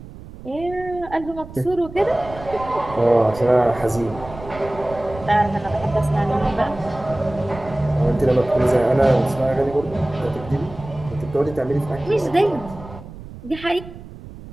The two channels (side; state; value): right; noise; rumble, 15 dB below the sound